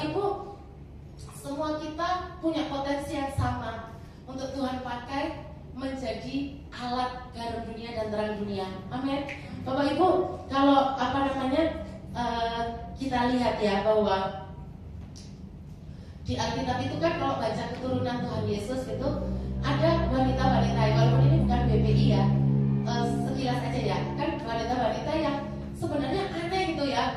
Ibu, semua kita punya potensi yang sama untuk Tuhan pakai menjadi alat garam dunia dan terang dunia. Amin. Bapak Ibu, kalau kita lihat ya bahwa di Alkitab itu kan kalau baca keturunan Tuhan Yesus itu ada wanita-wanita, walaupun ini bukan BPI ya, sekilas aja ya, kan wanita-wanita yang sebenarnya aneh gitu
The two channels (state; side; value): identical; both; correlation 1.00